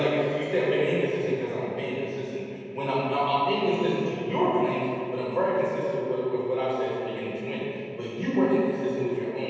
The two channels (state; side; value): identical; both; correlation 1.00